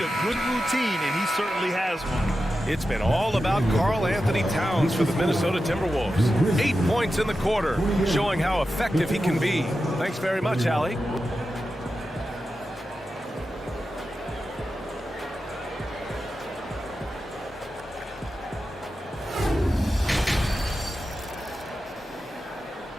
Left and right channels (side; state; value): both; normal; correlation 0.91